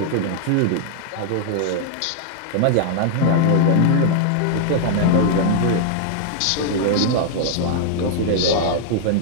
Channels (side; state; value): both; different; correlation -0.01